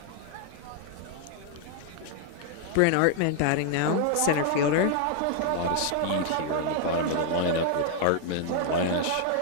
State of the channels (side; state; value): both; different; correlation 0.00